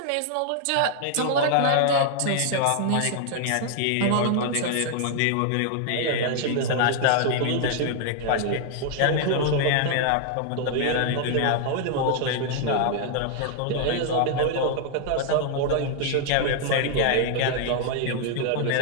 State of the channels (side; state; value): both; different; correlation 0.00